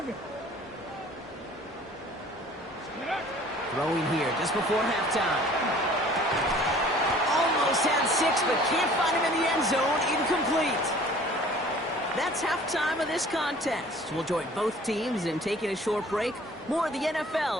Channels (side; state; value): both; normal; correlation 0.50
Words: Throwing here just before halftime. Almost had 6, but can't find him in the end zone. Incomplete. That's halftime of this contest. We'll join both teams in taking a short break. More of the